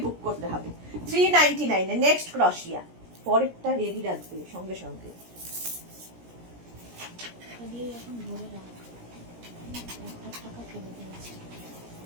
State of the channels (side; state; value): left; late; 17 ms